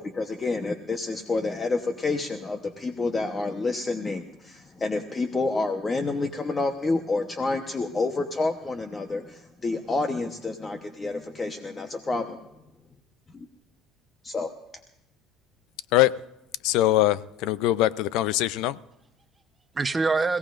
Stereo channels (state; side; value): quieter; right; 4.9 dB